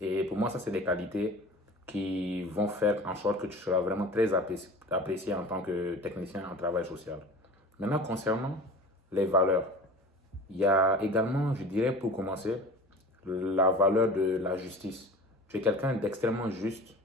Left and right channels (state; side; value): normal; both; correlation 0.39